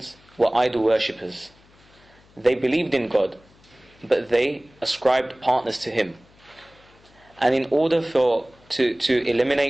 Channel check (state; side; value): noise; left; hum, 29 dB below the sound